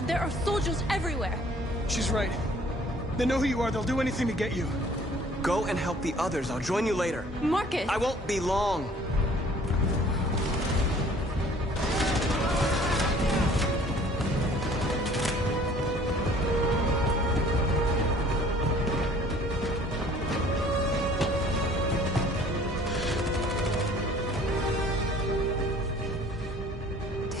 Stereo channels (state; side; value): normal; both; correlation 0.54